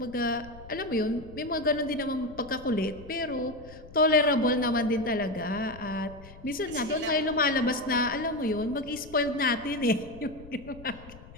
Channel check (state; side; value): noise; left; rumble, 18 dB below the sound